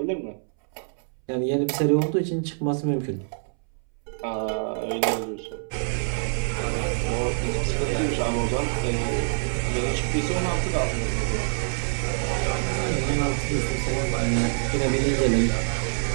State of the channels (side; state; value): left; silent; 61 dB below the other